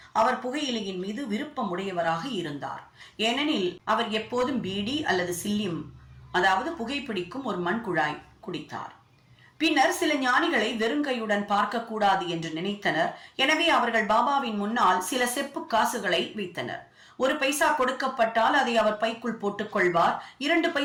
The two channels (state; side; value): identical; both; correlation 1.00